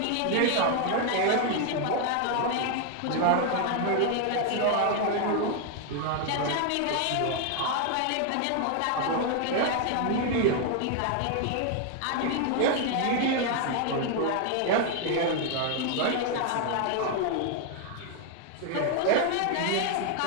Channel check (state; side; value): different; both; correlation 0.00